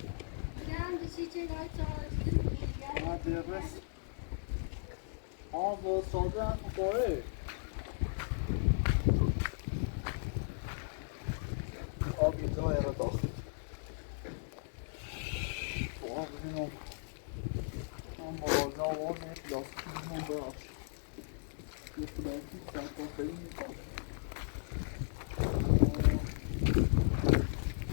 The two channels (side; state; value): right; silent; digital silence